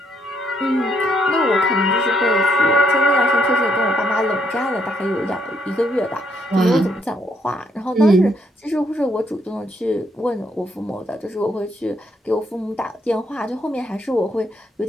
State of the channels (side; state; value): both; normal; correlation 0.73